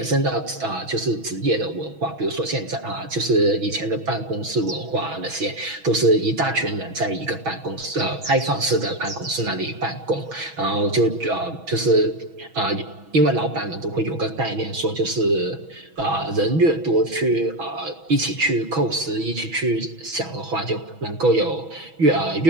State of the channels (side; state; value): left; late; 6.2 ms